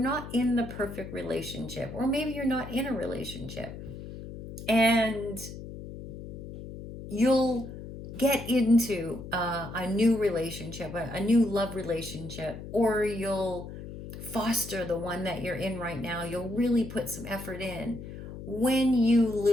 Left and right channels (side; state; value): left; noise; hum, 11 dB below the sound